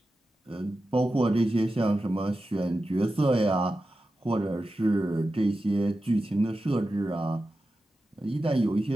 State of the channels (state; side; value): normal; both; correlation 0.92